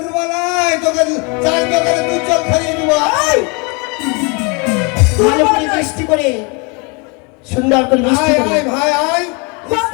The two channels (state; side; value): quieter; right; 31.9 dB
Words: তোকে চাই, তোকে দুধ জল খাইয়ে দিব। আয় ভালো করে মিষ্টি করে সুন্দর করে মিষ্টি আয় করে আয় ভাই আয়